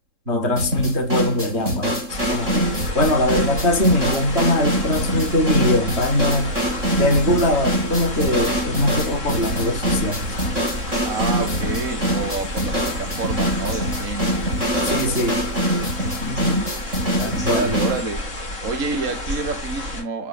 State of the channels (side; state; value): left; late; 3.7 ms